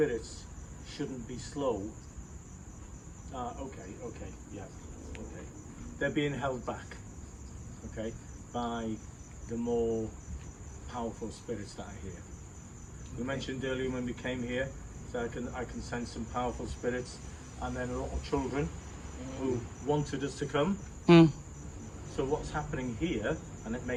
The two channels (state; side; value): identical; both; correlation 1.00